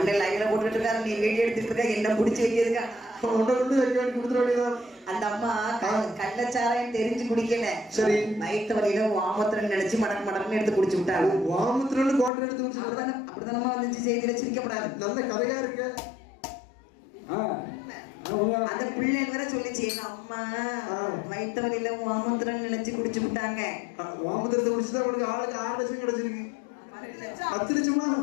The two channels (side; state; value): right; drops out; at 12.3 s